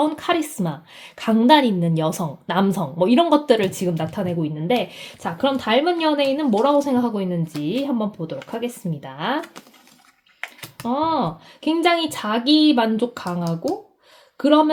카리스마, 강단 있는 여성, 남성 뭐 이런 것들을 지금 나타내고 있는데 자 그럼 닮은 연예인은 뭐라고 생각하고 있는지 한번 보도록 하겠습니다. 굉장히 자기 만족 강하고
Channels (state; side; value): identical; both; correlation 1.00